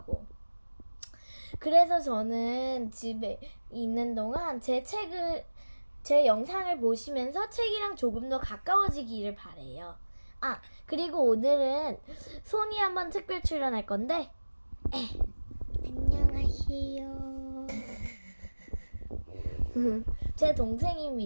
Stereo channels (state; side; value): inverted; both; correlation -1.00